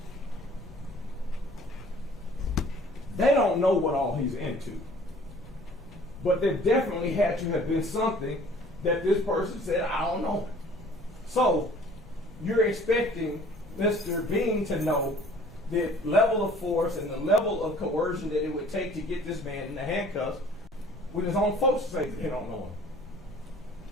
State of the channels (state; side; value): normal; both; correlation 0.52